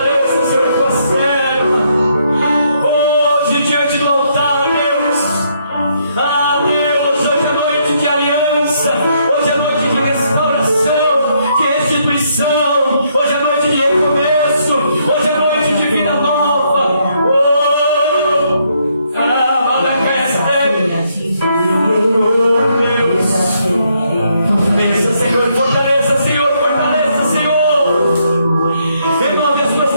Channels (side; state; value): both; inverted; correlation -0.73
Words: Senhor, a tua serva. Hoje, diante do altar, Deus, Deus, hoje é noite de aliança, hoje é noite de restauração, de restituição, hoje é noite de recomeço, hoje é noite de vida nova. Bença, Senhor, fortaleça, Senhor, fortaleça, Senhor. Renove as tuas